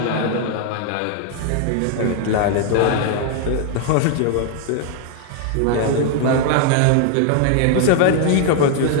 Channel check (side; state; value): both; different; correlation 0.00